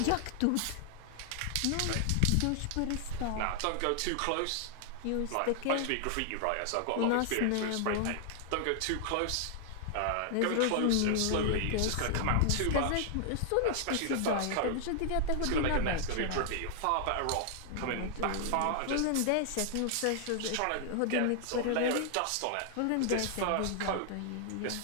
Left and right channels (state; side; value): different; both; correlation 0.00